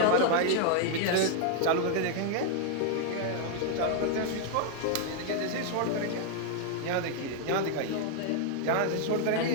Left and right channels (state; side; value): different; both; correlation 0.00